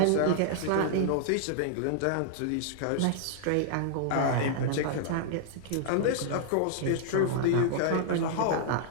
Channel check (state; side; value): different; both; correlation -0.01